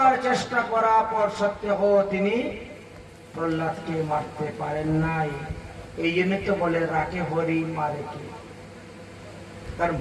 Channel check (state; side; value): identical; both; correlation 1.00